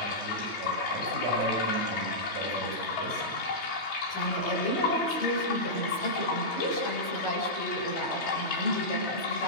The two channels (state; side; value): late; right; 3.2 ms